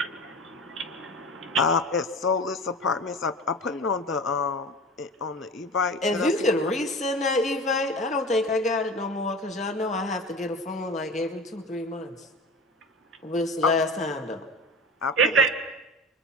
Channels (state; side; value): normal; both; correlation 0.34